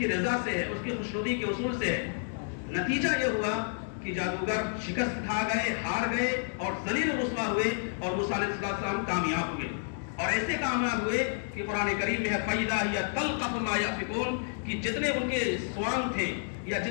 رضا سے ہے، اس کی خوشنودی کے اصول سے ہے۔ نتیجہ یہ ہوا کہ جادوگر شکست کھا گئے، ہار گئے اور ذلیل و رسوا ہوئے، اور موسیٰ علیہ السلام کامیاب ہوئے، اور ایسے کامیاب ہوئے کہ قرآن کریم میں ہے فَإِذَا هِيَ تَلْقَفُ مَا يَأْفِكُونَ، کہ جتنے ان کے سوانگ تھے یا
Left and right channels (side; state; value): right; silent; digital silence